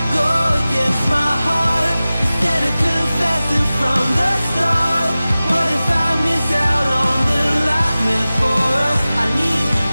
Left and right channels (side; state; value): both; inverted; correlation -0.97